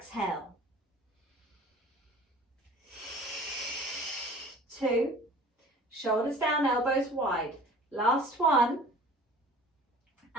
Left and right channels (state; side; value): normal; both; correlation 0.46